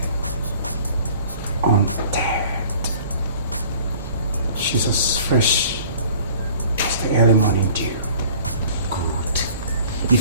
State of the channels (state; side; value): inverted; both; correlation -0.49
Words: Untamed. She's as fresh as the early morning dew. Good.